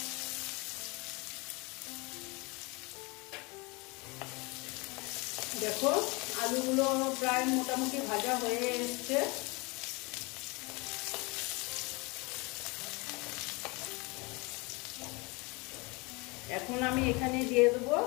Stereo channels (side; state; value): right; quieter; 27.1 dB